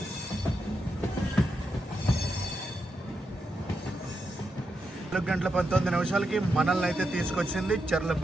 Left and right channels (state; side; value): normal; both; correlation 0.85